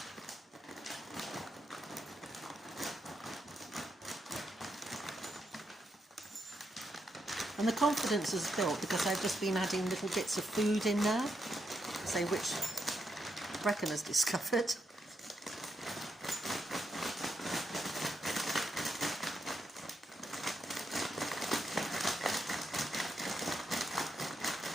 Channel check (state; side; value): normal; both; correlation 0.82